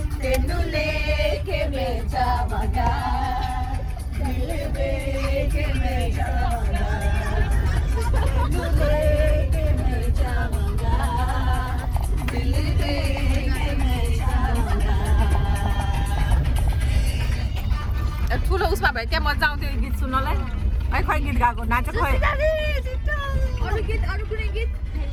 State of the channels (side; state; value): both; identical; correlation 1.00